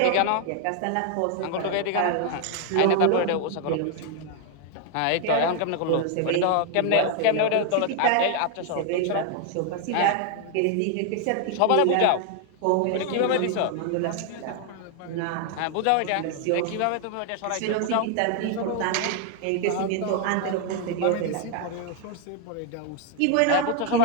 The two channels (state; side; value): different; both; correlation 0.00